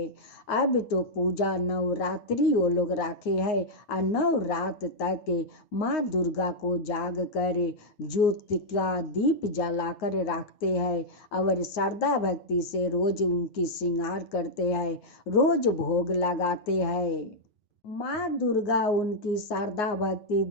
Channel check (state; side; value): late; right; 9.1 ms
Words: अब तो पूजा नवरात्रि वो लोग रखे हैं और 9 रात तक माँ दुर्गा को जाग कर ज्योति का दीप जलाकर रखते हैं और श्रद्धा भक्ति से रोज उनकी श्रृंगार करते हैं, रोज भोग लगाते हैं। माँ दुर्गा उनकी श्रद्धा भक्ति